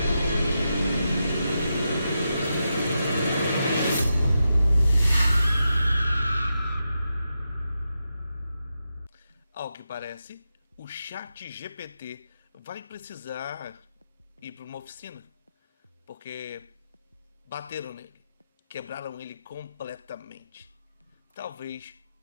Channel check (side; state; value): both; inverted; correlation -0.87